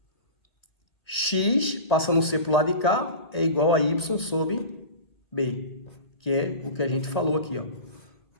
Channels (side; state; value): right; late; 1.8 ms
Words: x, passando o c para o lado de cá, é igual a y sobre b, que é o que a gente falou aqui, ó.